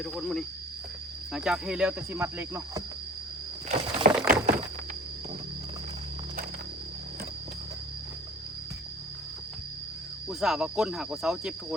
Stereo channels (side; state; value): both; normal; correlation 0.44